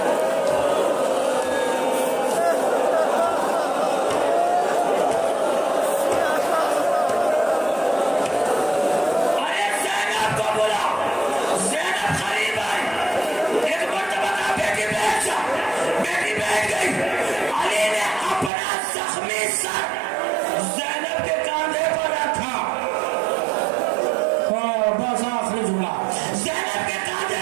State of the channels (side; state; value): left; drops out; at 18.5 s